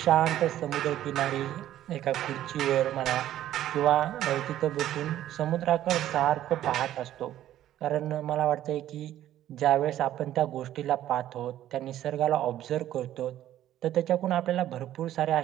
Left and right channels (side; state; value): left; quieter; 12.6 dB